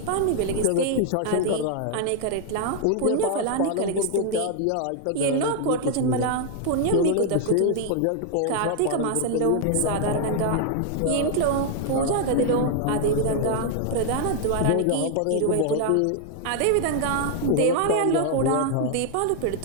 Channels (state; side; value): different; both; correlation 0.00